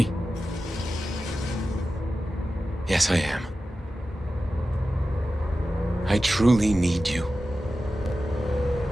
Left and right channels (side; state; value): both; normal; correlation 0.93